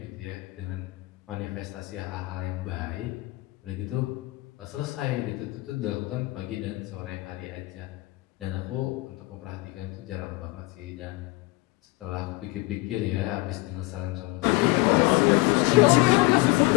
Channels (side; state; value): right; quieter; 22.2 dB